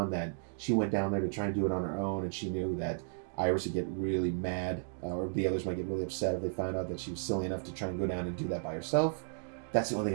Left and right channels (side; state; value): left; silent; digital silence